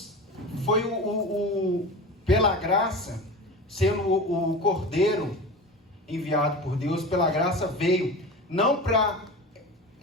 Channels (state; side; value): normal; both; correlation 0.30